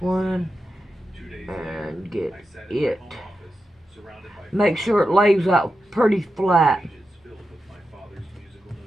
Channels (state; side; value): normal; both; correlation 0.89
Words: one and get it. Make sure it lays out pretty flat.